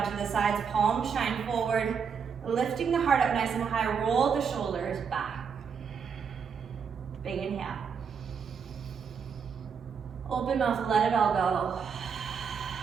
to the sides, palms shine forward, lifting the heart up nice and high, roll the shoulders back. Big inhale. Open mouth, let it all go.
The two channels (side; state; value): left; quieter; 6.5 dB